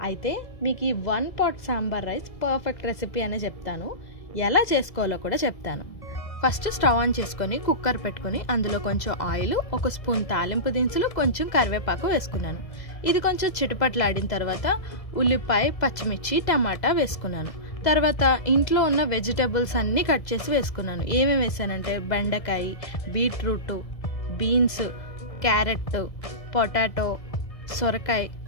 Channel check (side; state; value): right; late; 2.0 ms